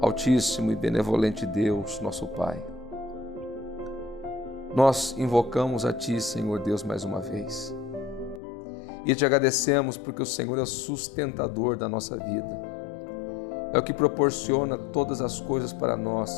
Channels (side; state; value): right; drops out; at 8.4 s